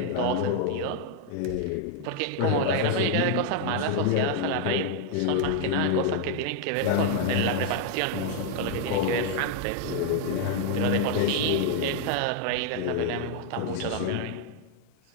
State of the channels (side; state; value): both; different; correlation 0.00